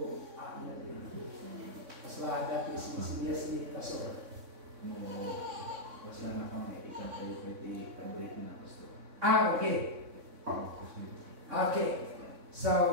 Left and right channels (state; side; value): late; left; 3.6 ms